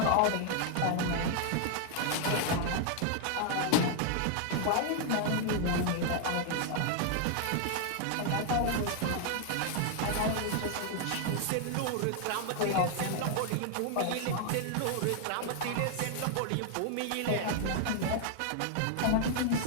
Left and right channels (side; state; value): both; different; correlation 0.00